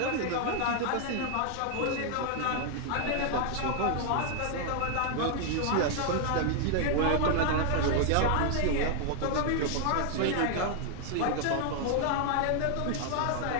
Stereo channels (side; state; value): both; different; correlation 0.00